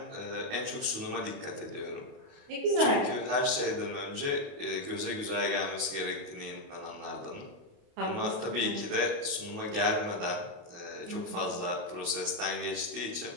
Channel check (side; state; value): left; late; 28 ms